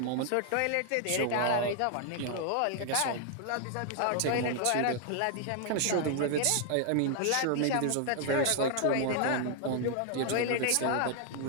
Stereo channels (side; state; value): both; different; correlation 0.00